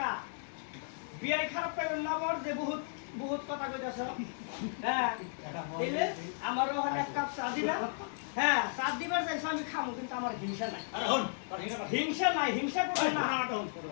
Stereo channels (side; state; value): right; silent; digital silence